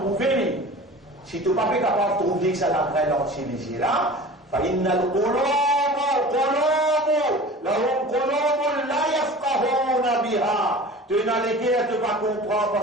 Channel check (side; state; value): both; normal; correlation 0.39